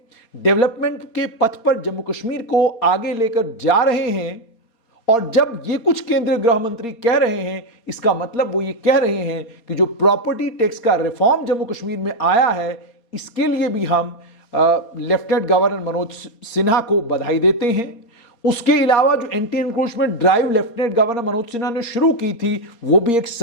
डेवलपमेंट के पथ पर जम्मू कश्मीर को आगे लेकर जा रहे हैं। और जब ये कुछ केंद्रीय गृह मंत्री कह रहे हैं, इसका मतलब वो ये कह रहे हैं कि जो प्रॉपर्टी टैक्स का रिफॉर्म जम्मू कश्मीर में आया है, इसके लिए भी हम लेफ्टिनेंट गवर्नर मनोज सिन्हा को बधाई देते हैं। उसके अलावा जो anti encroachment drive lieutenant governor Manoj Sinha ने शुरू की थी, वो भी एक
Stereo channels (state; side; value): late; right; 4.3 ms